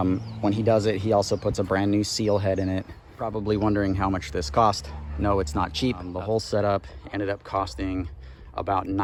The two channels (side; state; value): both; identical; correlation 1.00